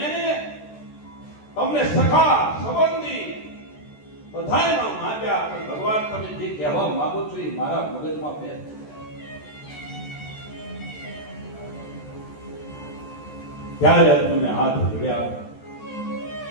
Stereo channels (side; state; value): right; late; 14 ms